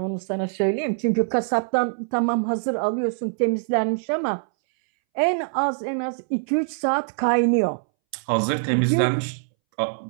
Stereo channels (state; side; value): silent; left; 63 dB below the other